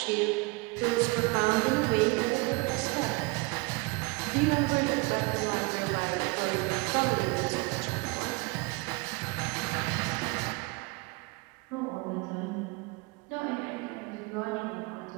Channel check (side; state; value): left; quieter; 27.3 dB